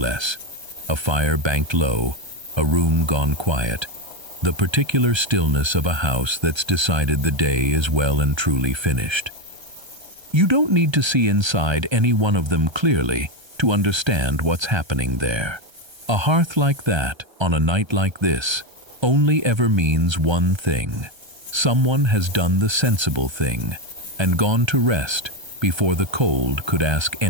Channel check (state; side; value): late; left; 1.3 ms